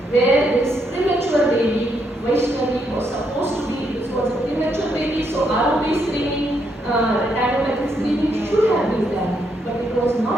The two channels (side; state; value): both; normal; correlation 0.77